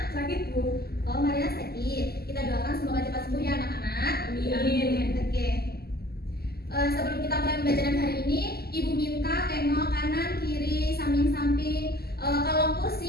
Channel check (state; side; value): late; right; 0.46 ms